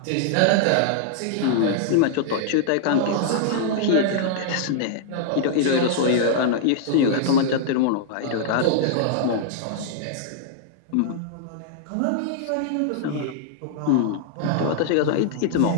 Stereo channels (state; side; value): different; both; correlation -0.01